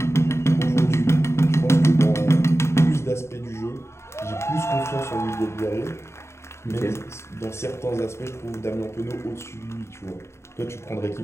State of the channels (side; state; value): right; late; 0.13 ms